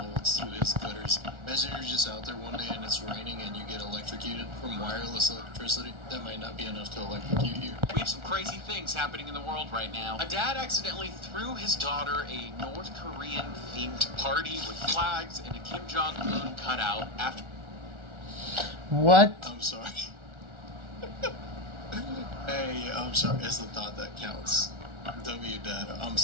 through his gutters. Imagine you're just out there one day and it's raining and you get electrocuted from wireless electricity. That might not be enough to electrocute you. We have some crazy things happening in the world right now. A dad accidentally threw his daughter a North Korean-themed party with flags and a Kim Jong-un cutout after... What? I'm sorry. Hey, I'm sorry. It's the thought that counts. W-Dad. I'm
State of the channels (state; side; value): late; left; 1.4 ms